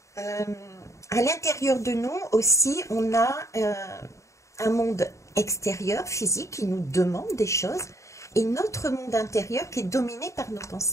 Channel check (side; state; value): right; late; 0.15 ms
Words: À l'intérieur de nous aussi, on a un monde extérieur, physique, qui nous demande des choses, et notre monde intérieur qui est dominé par nos